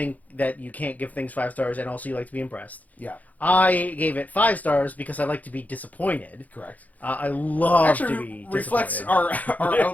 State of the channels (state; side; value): late; right; 0.077 ms